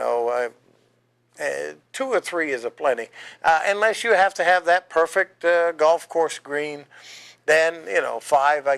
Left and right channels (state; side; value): identical; both; correlation 1.00